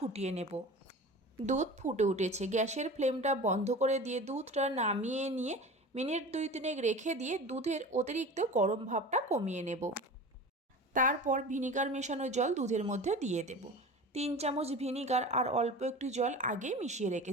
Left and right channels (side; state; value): both; normal; correlation 0.35